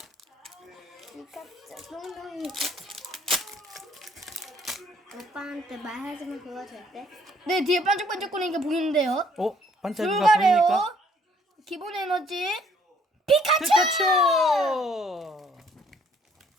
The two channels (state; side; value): normal; both; correlation 0.63